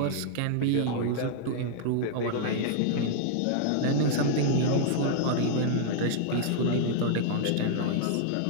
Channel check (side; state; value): both; different; correlation -0.01